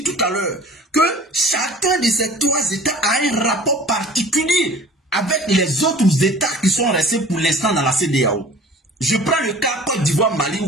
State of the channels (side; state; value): both; normal; correlation 0.46